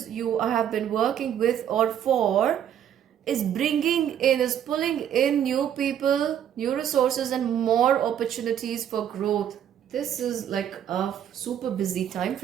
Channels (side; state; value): left; quieter; 9.7 dB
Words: you have been working with or for is pulling in new people, new resources, and more opportunities for growth. This is like a super busy time